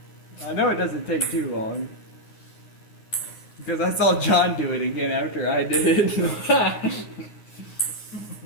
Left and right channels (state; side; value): late; right; 9.6 ms